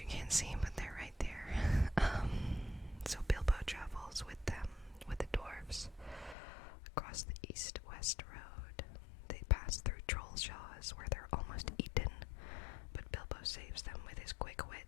can't see, but they're right there. So Bilbo travels with them, with the dwarves, across the east-west road. They pass through Trollshaws, where they're almost eaten, but Bilbo saves them with his quick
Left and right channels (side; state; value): right; drops out; at 6.4 s